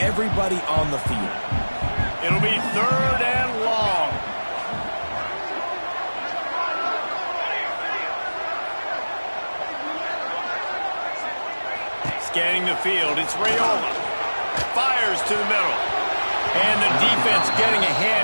on the field. It'll be 3rd and long. Scanning the field, it's Raiola. Fires to the middle. And the defense getting a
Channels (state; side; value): inverted; both; correlation -1.00